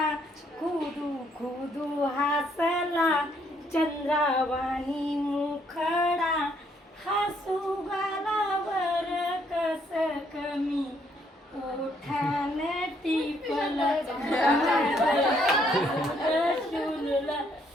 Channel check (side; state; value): both; normal; correlation 0.70